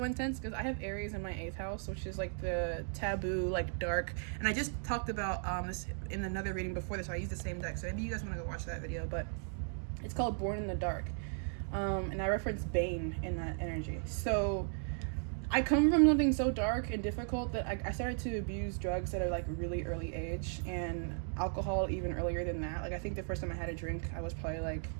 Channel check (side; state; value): left; silent; 54 dB below the other